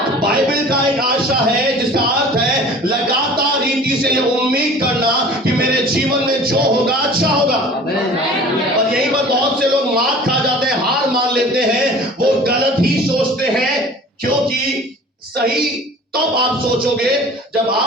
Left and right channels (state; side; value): normal; both; correlation 0.44